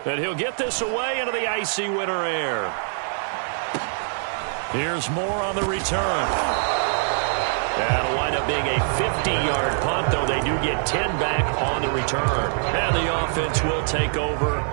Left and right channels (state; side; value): silent; left; digital silence